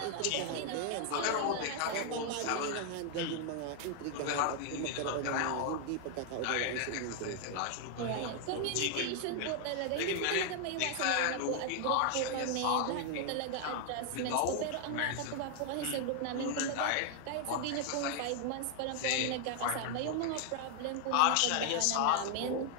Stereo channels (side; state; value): both; different; correlation 0.00